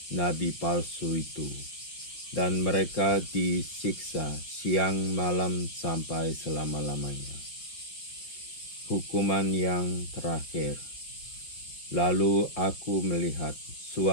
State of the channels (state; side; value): late; right; 5.6 ms